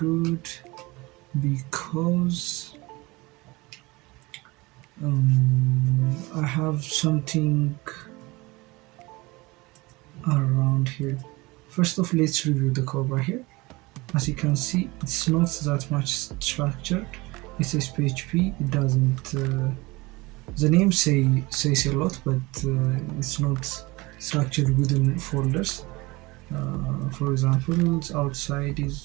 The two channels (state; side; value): quieter; left; 23.0 dB